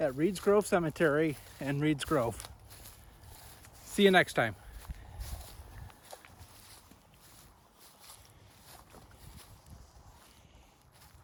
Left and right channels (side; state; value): both; identical; correlation 1.00